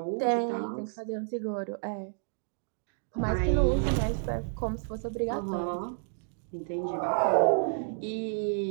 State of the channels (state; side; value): silent; left; digital silence